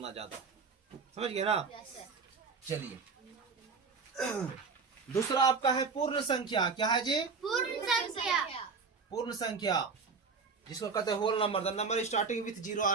ज्यादा, समझ गए ना। चलिए दूसरा आपका है पूर्ण संख्या। क्या है जी? पूर्ण संख्या। पूर्ण संख्या जिसको कहते हैं whole number. The number starting with 0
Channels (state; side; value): quieter; left; 5.0 dB